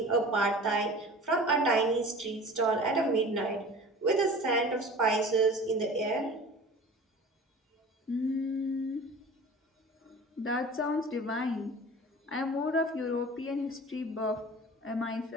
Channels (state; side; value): normal; both; correlation 0.40